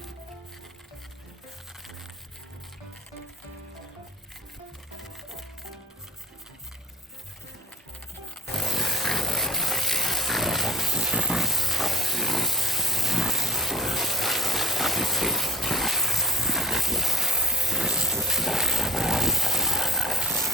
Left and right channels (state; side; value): normal; both; correlation 0.46